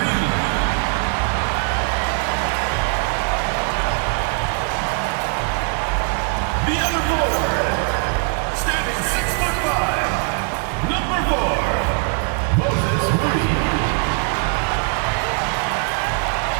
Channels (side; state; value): left; quieter; 38.2 dB